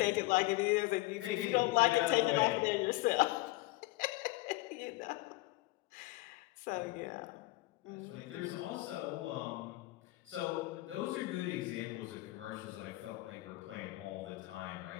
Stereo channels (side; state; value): right; quieter; 20.0 dB